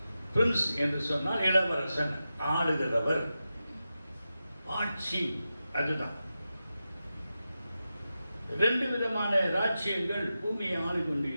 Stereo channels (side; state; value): both; inverted; correlation -0.91